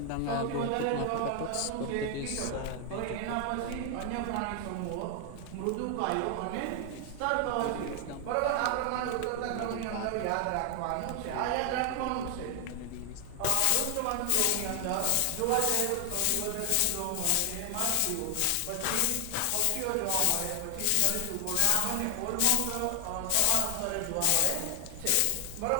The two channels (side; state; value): both; different; correlation 0.00